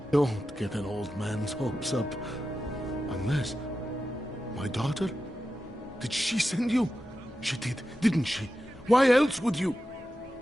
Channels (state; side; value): normal; both; correlation 0.91